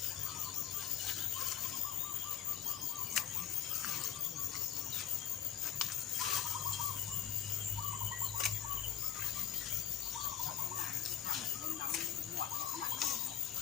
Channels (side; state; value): right; quieter; 9.8 dB